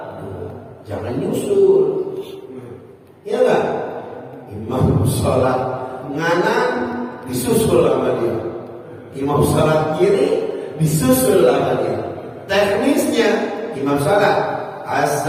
jangan nyusul. Ya enggak? Imam sholat nganan disusul sama dia, imam sholat kiri disusul sama dia. Teknisnya imam sholat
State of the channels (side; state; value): both; identical; correlation 1.00